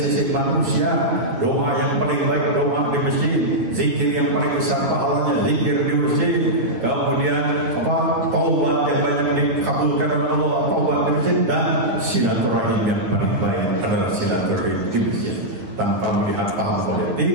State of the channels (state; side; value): late; left; 9.7 ms